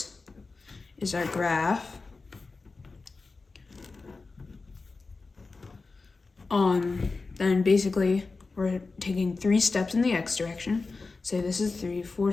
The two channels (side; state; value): right; quieter; 4.0 dB